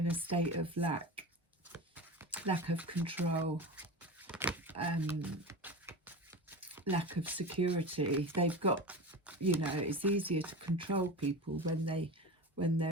a state of lack of control, lack of security, they've got, you know, it's easier to control people when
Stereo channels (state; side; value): normal; both; correlation 0.28